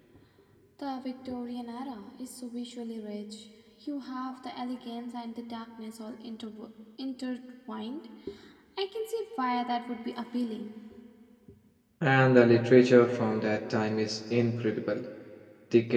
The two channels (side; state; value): both; identical; correlation 1.00